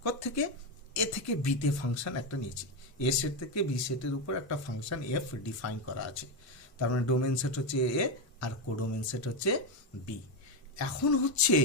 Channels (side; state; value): both; normal; correlation 0.10